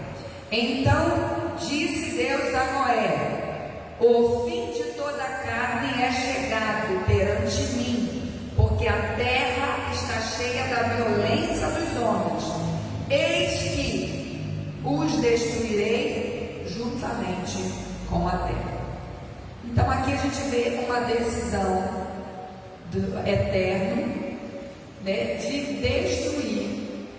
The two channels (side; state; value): both; identical; correlation 1.00